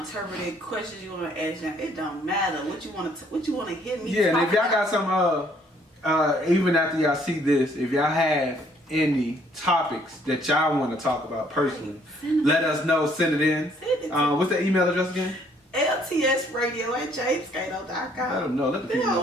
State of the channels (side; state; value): both; normal; correlation 0.64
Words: to interpret, questions you want to ask them, it don't matter. What you want to hit me. Yeah, and if y'all got some, even after y'all see this, if y'all have any topics that y'all want to talk about personally, let us know. Send it in. What's the email address again? LTS Radio at jamescato.com. Let them know. Let the people